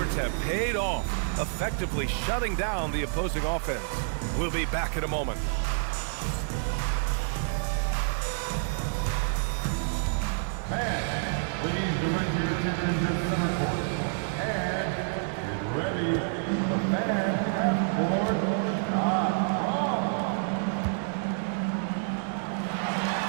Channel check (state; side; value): silent; left; digital silence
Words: have paid off, effectively shutting down the opposing offense. We'll be back in a moment. Please direct your attention to center court and get ready for the fan half-court shot from.